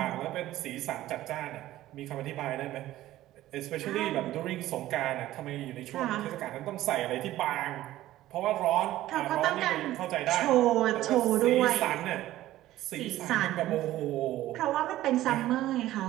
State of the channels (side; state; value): left; quieter; 14.9 dB